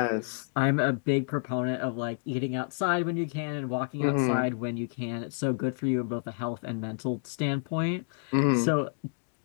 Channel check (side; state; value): right; silent; digital silence